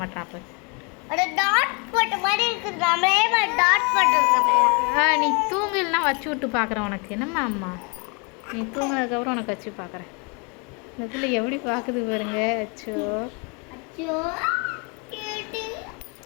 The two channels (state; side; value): quieter; right; 32.6 dB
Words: மாட்டாப்ப. நீ தூங்கலாம் வச்சு விட்டு பார்க்குறேன் உனக்கு. என்னம்மா அம்மா, நீ தூங்கினதுக்கப்புறம் உனக்கு வச்சு பார்க்குறேன். இந்த பிள்ளை எப்படி பார்க்குது பாருங்க. அச்சோ